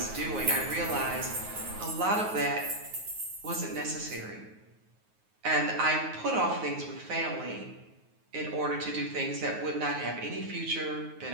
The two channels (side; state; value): left; late; 9.4 ms